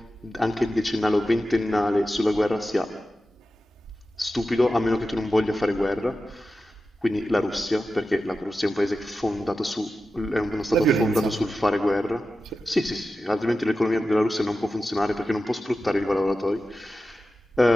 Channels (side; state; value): both; normal; correlation 0.93